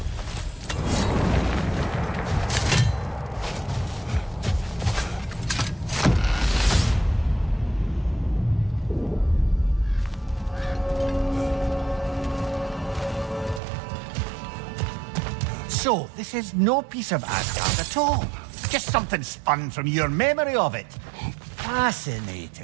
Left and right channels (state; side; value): drops out; left; at 13.6 s